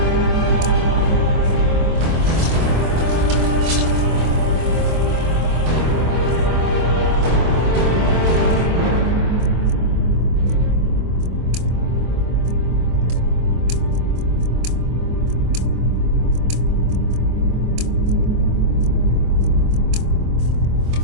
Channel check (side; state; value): left; late; 25 ms